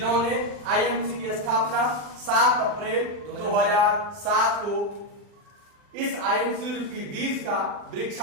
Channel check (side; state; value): left; late; 40 ms